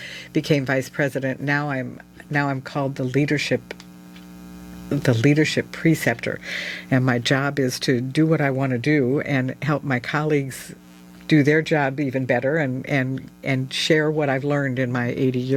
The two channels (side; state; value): both; identical; correlation 1.00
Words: Became vice president. Now I'm called the leadership preceptor, and my job is to do what I want to do and help my colleagues do their job even better, and share what I've learned in my 80